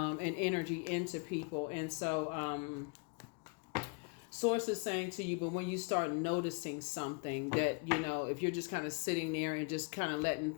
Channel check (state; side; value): quieter; right; 34.9 dB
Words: energy into people. And so Source is saying to you, but when you start noticing something that if you're just kind of sitting there and just kind of letting